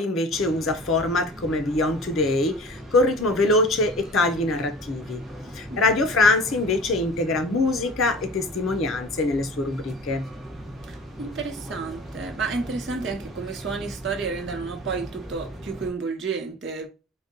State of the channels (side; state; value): both; normal; correlation 0.42